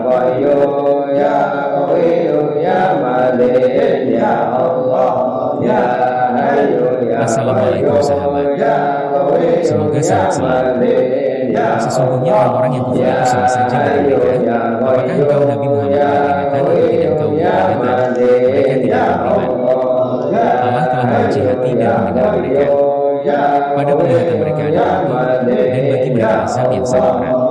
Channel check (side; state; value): both; identical; correlation 1.00